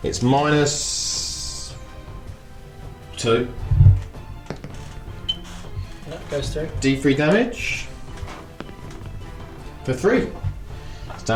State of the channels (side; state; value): both; identical; correlation 1.00